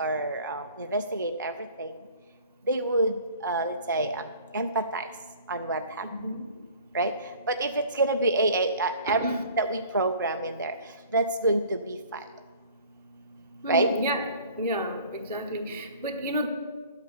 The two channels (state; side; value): inverted; both; correlation -0.48